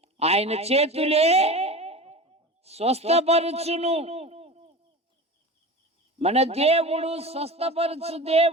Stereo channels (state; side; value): normal; both; correlation 0.32